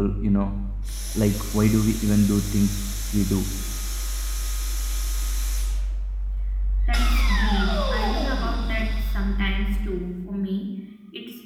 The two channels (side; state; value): both; identical; correlation 1.00